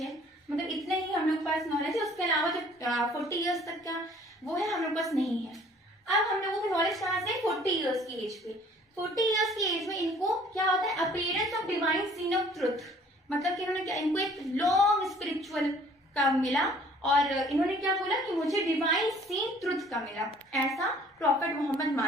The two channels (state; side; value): normal; both; correlation 0.55